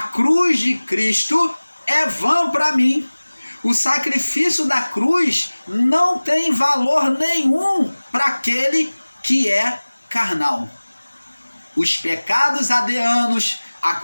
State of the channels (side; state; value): both; inverted; correlation -1.00